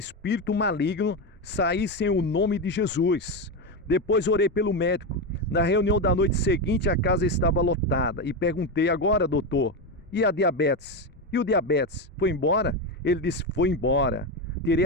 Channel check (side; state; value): both; normal; correlation 0.13